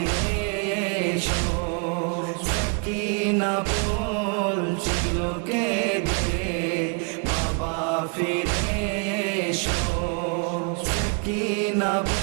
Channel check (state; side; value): quieter; left; 37.7 dB